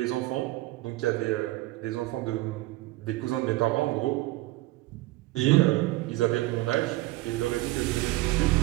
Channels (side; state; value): left; quieter; 18.8 dB